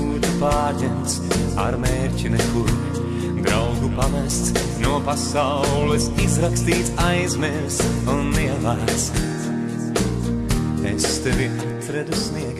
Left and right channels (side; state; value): both; identical; correlation 1.00